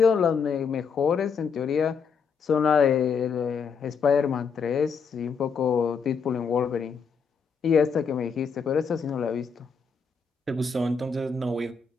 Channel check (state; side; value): quieter; right; 5.8 dB